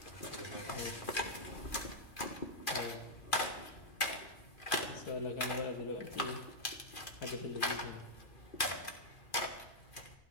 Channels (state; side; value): late; right; 2.4 ms